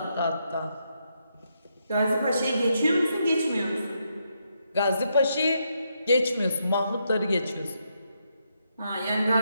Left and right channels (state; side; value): inverted; both; correlation -0.79